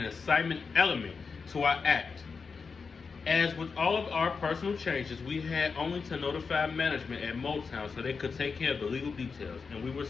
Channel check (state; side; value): quieter; right; 5.1 dB